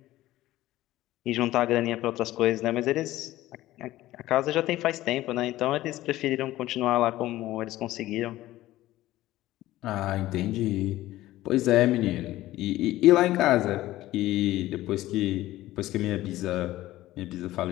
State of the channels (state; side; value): quieter; right; 15.9 dB